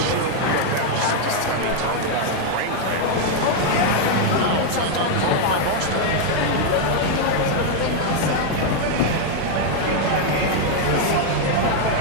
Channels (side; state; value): both; different; correlation 0.00